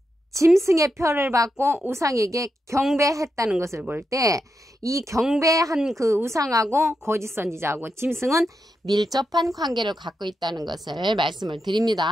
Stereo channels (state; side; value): normal; both; correlation 0.86